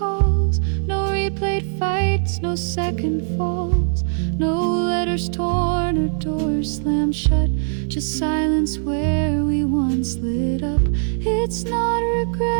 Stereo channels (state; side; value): silent; left; 65 dB below the other